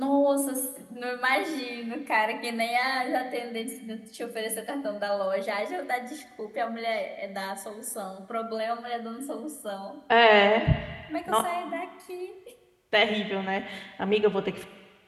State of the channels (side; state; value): both; identical; correlation 1.00